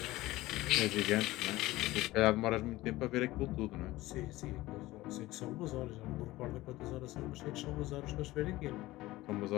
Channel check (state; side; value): quieter; right; 18.1 dB